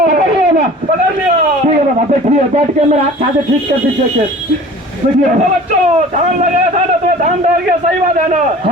पकड़ लिया ना? पकड़ लिया। ठीक है बाबा, बैठिए, बैठ के मेरा हाथ से ठीक कर दीजिए। बैठिए तो बच्चों, धान लगाया था ना, तो धान डर गया, सही बात है ना?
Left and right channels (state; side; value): normal; both; correlation 0.43